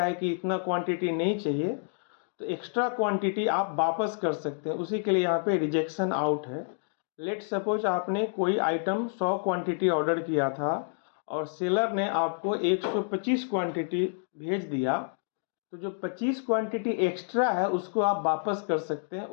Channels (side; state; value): right; silent; digital silence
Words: है कि इतना क्वांटिटी नहीं चाहिए, तो एक्स्ट्रा क्वांटिटी आप वापस कर सकते हैं। उसी के लिए यहाँ पे रिजेक्शन आउट है। लेट सपोज आपने कोई आइटम 100 क्वांटिटी ऑर्डर किया था और सेलर ने आपको 125 क्वांटिटी भेज दिया, तो जो 25 क्वांटिटी एक्स्ट्रा है उसको आप वापस कर सकते हैं।